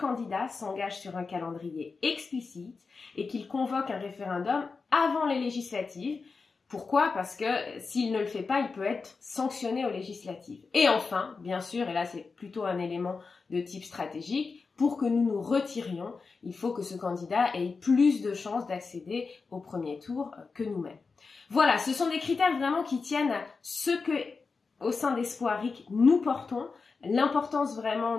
s'engage sur un calendrier explicite et qu'il convoque un référendum avant les législatives. Pourquoi? Parce que s'il ne le fait pas, il peut être sanctionné aux législatives. Et enfin, bien sûr, et là c'est plutôt un élément de type stratégique, pour que nous nous retirions, il faut que ce candidat ait plus de chances d'accéder au premier tour que nous-mêmes. Voilà, ce sont des critères vraiment qui tiennent à ce que, au sein d'Espoiric, nous portons, l'importance vraiment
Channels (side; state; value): right; quieter; 4.6 dB